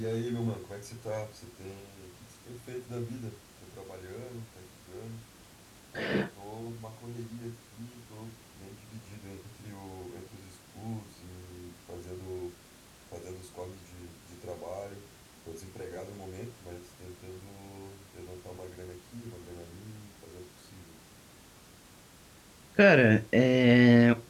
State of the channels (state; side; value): identical; both; correlation 1.00